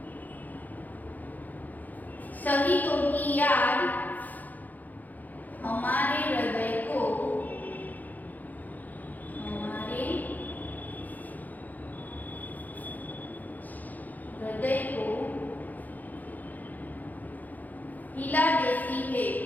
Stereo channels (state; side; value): late; right; 0.082 ms